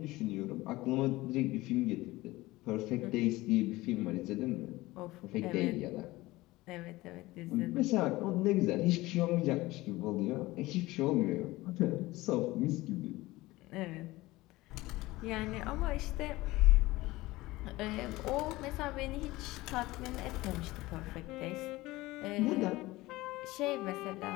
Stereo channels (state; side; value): quieter; right; 19.3 dB